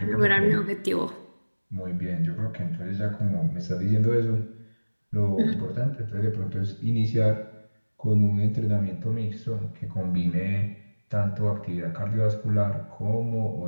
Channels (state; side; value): inverted; both; correlation -1.00